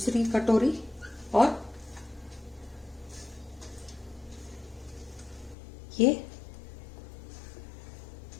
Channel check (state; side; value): drops out; right; at 5.6 s